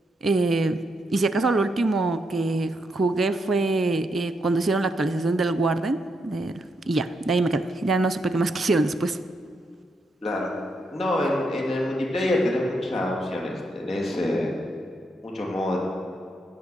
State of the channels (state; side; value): normal; both; correlation 0.80